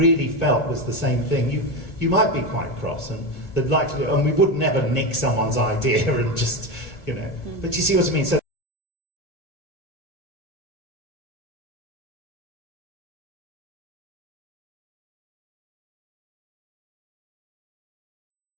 felt was the same thing. You might be quite cross, and we would never nick someone's idea and just, But you see what I mean? So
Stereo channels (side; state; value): right; late; 1.6 ms